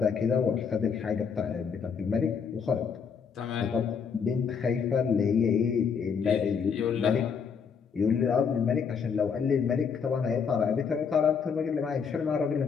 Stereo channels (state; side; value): quieter; right; 6.4 dB